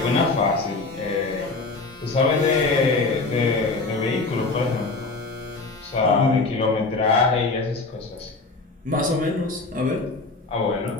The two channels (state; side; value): quieter; right; 3.6 dB